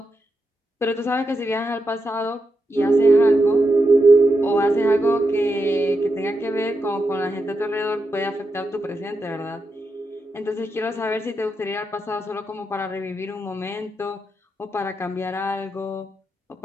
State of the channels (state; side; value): normal; both; correlation 0.86